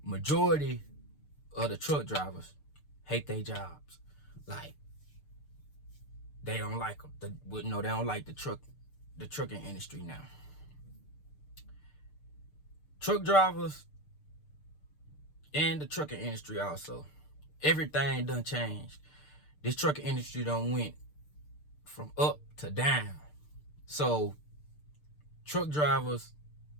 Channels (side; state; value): right; late; 6.7 ms